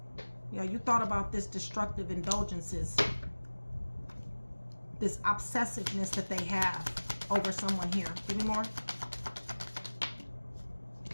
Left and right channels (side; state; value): both; inverted; correlation -1.00